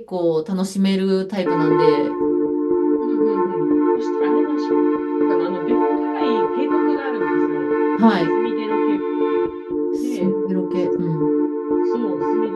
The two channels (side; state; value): both; identical; correlation 1.00